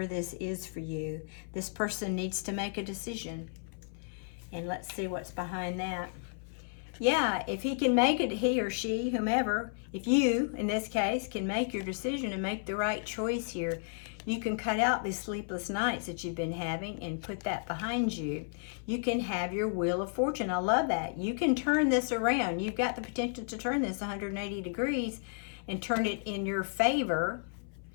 this is for you. This person needs to make a decision. And let's see what's behind that. Yeah, if he can make it, he or she, whomever, if you, in this case, can make your decision and make the right choice here, you can cut out these sleepless nights that you've been having and put that behind you. You can have your wheel of fortune. I love that. You can turn this around. You've got the potential to turn this 180 degrees and turn it in your favor.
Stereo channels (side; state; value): right; silent; 56 dB below the other